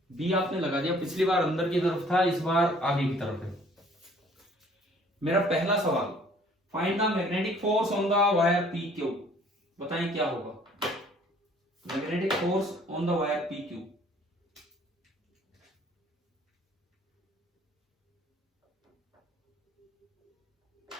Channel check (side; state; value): both; normal; correlation 0.56